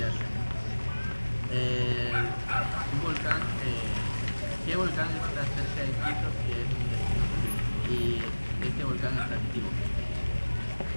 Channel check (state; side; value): inverted; both; correlation -1.00